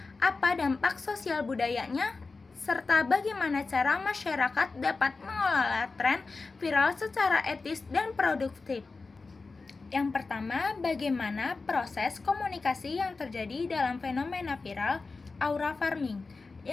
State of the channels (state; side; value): quieter; right; 4.0 dB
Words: apa dampak sosial budayanya, serta bagaimana cara masyarakat dapat mengelola tren viral secara etis dan produktif. Yang pertama, bagaimana proses komunikasi yang terjadi dalam fenomena viral aura farming.